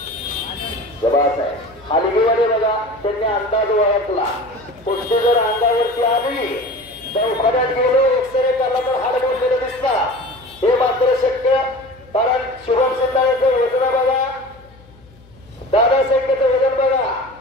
जबास आहे. हलगीमध्ये बघा त्यांनी अंदाज ओळखला. कुस्ती जर अंगावरती आली तर उखाड्यात गेलो एक्सरे करला तर हाड मोडलेलं दिसला. हे मात्र शक्य कारण शुभम सिंधाळेचं वजन बघा दादासाहेबचं वजन बघा.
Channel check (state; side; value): noise; left; hum, 26 dB below the sound